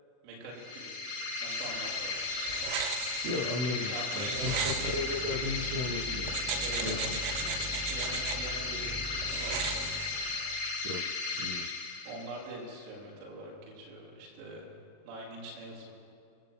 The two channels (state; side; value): late; left; 41 ms